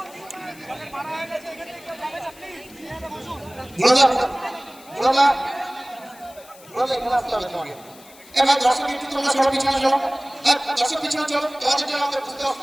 এবার দর্শক একটু তোমরা সবাই পিছনে চলো। দর্শক পিছনে চলো, তোমাদের জন্য আমাদের বুঝতে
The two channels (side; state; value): left; noise; hiss, 22 dB below the sound